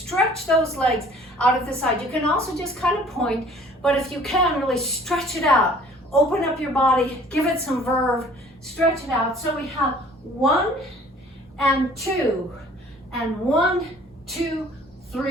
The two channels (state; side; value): normal; both; correlation 0.53